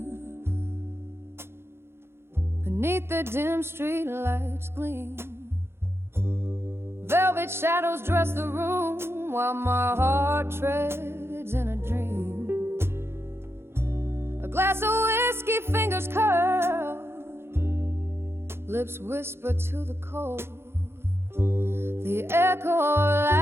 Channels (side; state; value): left; late; 0.12 ms